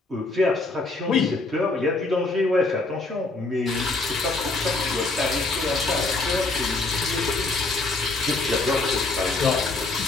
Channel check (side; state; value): right; quieter; 3.4 dB